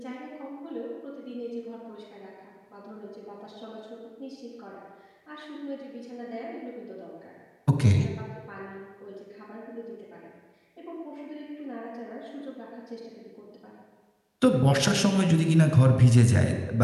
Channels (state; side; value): identical; both; correlation 1.00